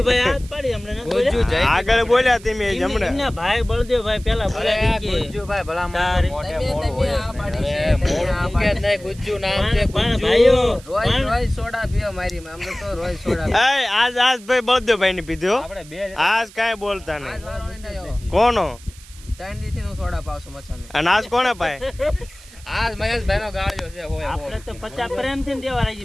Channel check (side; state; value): right; noise; hiss, 21 dB below the sound